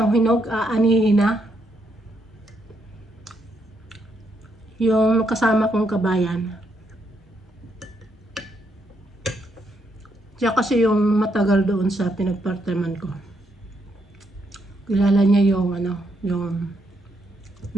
hinog, aanihin na. Yung kasama kong kabayan. Siya kasi yung matagal doon sa pinag-part-timean ko. Kilala niya yung yung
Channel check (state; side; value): normal; both; correlation 0.77